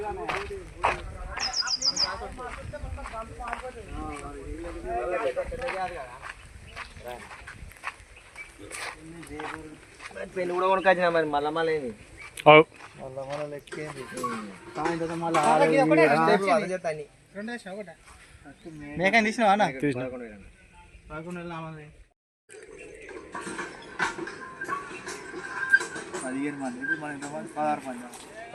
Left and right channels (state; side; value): identical; both; correlation 1.00